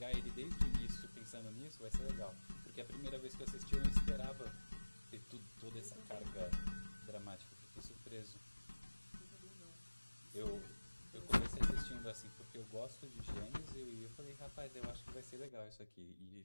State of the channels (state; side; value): inverted; both; correlation -1.00